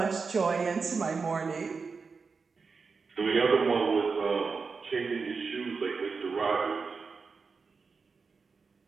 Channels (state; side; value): quieter; left; 4.8 dB